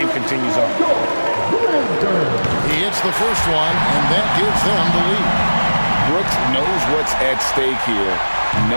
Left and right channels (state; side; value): inverted; both; correlation -1.00